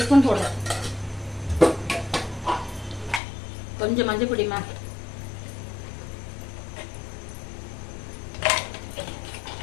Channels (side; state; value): right; drops out; at 3.2 s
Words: ஸ்பூன் போடுறேன். கொஞ்சம் மஞ்சள் பொடிமா,